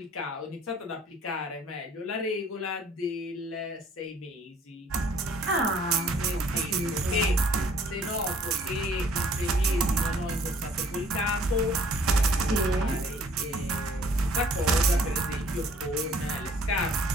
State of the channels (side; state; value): both; normal; correlation 0.57